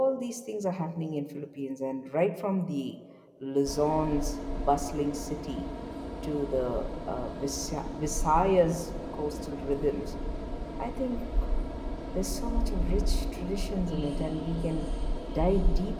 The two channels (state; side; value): identical; both; correlation 1.00